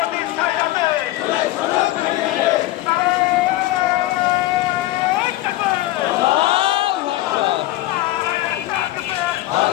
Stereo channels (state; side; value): quieter; right; 16.6 dB